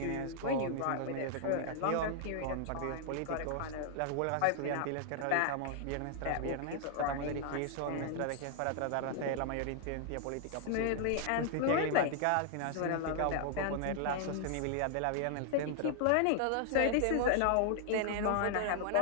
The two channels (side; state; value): both; different; correlation -0.01